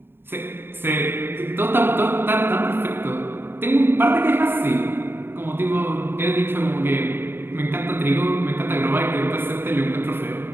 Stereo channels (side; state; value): left; late; 0.11 ms